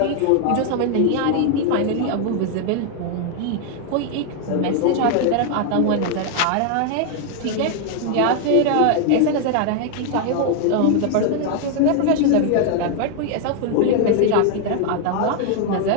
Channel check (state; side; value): different; both; correlation 0.00